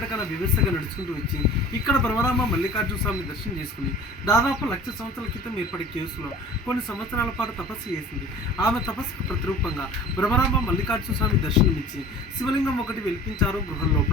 వివస్థగా నడుచుకుంటూ వచ్చి ఇక్కడ బ్రహ్మరామ మల్లికార్జున స్వామిని దర్శనం చేసుకుని దాదాపు 1,00,000 సంవత్సరాల క్రితం ఏర్పడే కేవ్స్లో కొన్ని సంవత్సరాల పాటు తపస్సు చేసింది. ఆమె తపస్సుకు ప్రతిరూపంగా బ్రహ్మరామ మల్లికార్జున స్వామి దర్శనమిచ్చి శివలింగం ఒకటి వెలిపించారు గృహం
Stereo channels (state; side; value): normal; both; correlation 0.43